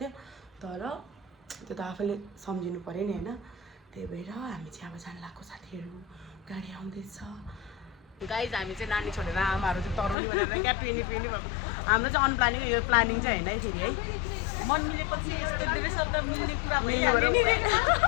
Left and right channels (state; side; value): drops out; right; at 10.2 s